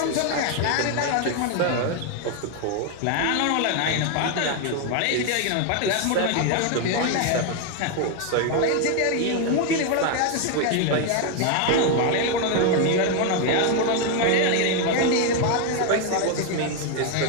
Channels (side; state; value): both; different; correlation 0.01